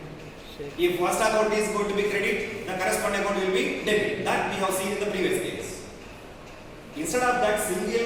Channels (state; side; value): identical; both; correlation 1.00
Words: If first account is going to be credit, the corresponding account will be debit. That we have seen in the previous case. Instead of that